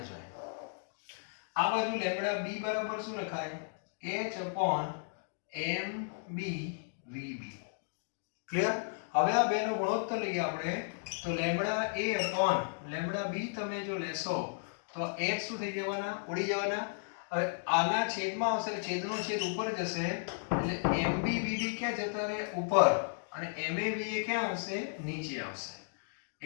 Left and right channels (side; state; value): right; silent; digital silence